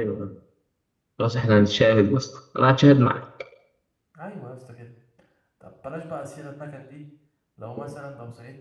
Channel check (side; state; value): both; identical; correlation 1.00